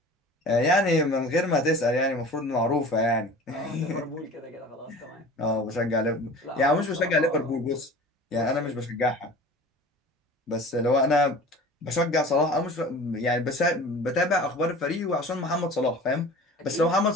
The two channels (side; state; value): both; normal; correlation 0.41